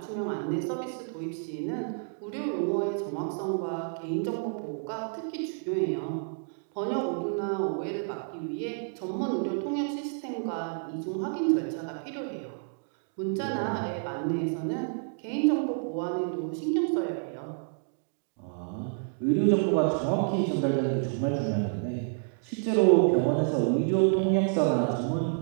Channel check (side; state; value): left; silent; digital silence